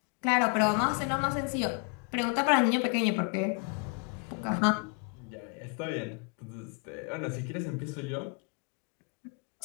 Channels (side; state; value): right; quieter; 34.1 dB